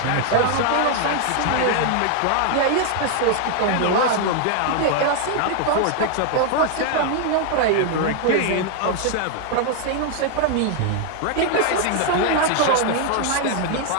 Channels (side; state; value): both; different; correlation 0.00